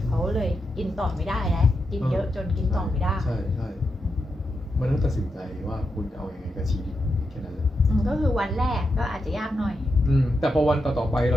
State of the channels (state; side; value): normal; both; correlation 0.86